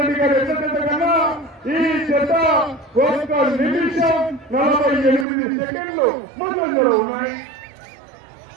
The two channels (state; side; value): drops out; left; at 5.2 s